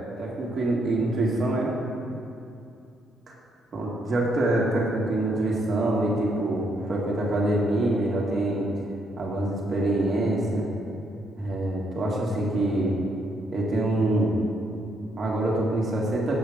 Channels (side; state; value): both; normal; correlation 0.74